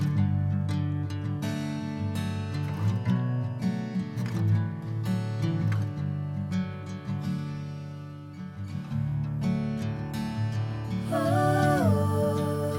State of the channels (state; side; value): identical; both; correlation 1.00